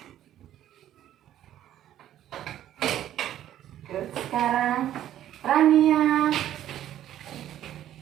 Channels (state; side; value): quieter; left; 11.9 dB